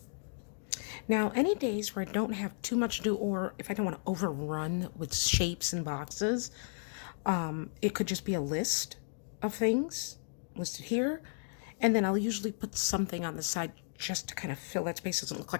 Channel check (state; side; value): silent; right; digital silence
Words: Now, any days where I don't have too much to do, or if I don't want to overrun with shapes and boxes, it could just be a list of things listed here. And then I'll usually put something on the side just to kind of fill that space. It doesn't look